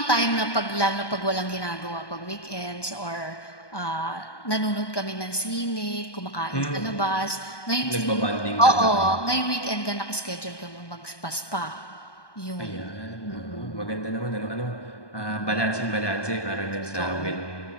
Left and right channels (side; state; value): right; late; 1.2 ms